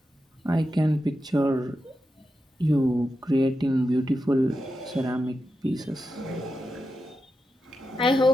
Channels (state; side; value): normal; both; correlation 0.89